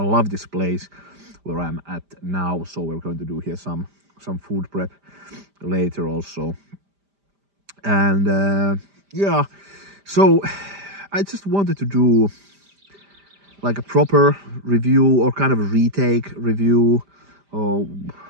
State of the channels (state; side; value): late; left; 5.0 ms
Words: this place where I'm at now, so we're going to do here some food prep later also. And yeah, so I just wanted to do like a proper review, or kind of a retake review, or